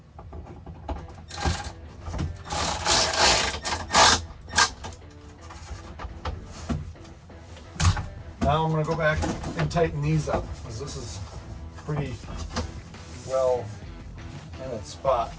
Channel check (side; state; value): both; identical; correlation 1.00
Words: Now I'm going to go back and tighten these up, because this is pretty well in its spot.